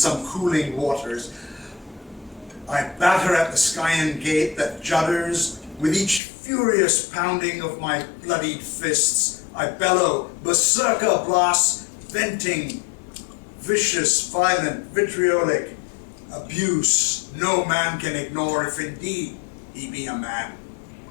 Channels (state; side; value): drops out; right; at 6.2 s